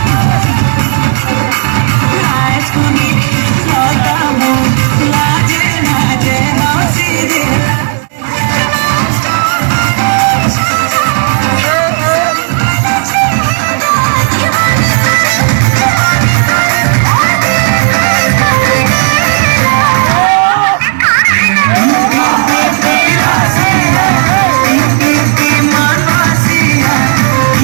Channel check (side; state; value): left; silent; digital silence